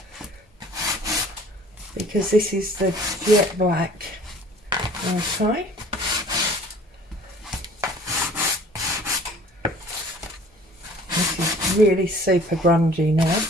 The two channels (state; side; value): normal; both; correlation 0.50